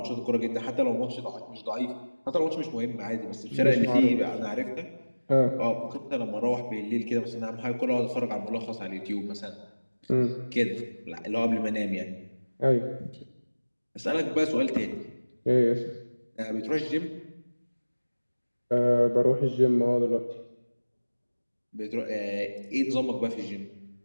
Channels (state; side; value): inverted; both; correlation -1.00